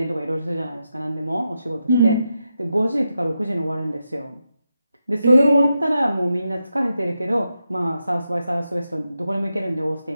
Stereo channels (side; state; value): both; inverted; correlation -0.87